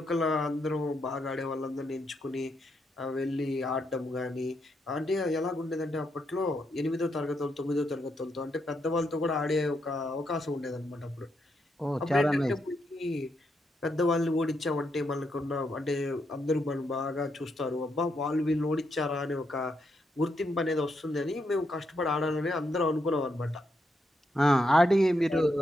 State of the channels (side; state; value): both; normal; correlation 0.80